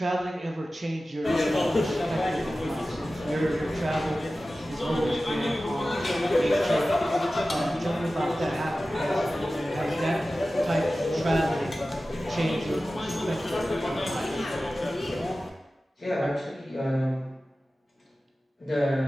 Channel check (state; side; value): normal; both; correlation 0.95